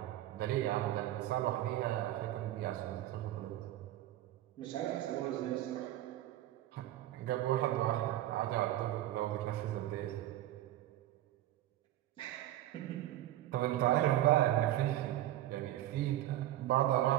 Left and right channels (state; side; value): quieter; left; 13.9 dB